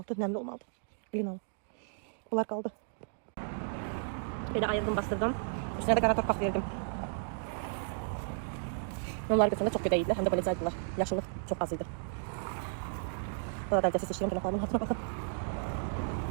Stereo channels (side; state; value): left; silent; digital silence